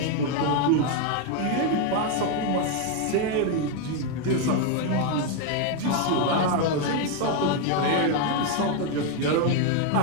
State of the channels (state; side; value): different; both; correlation 0.01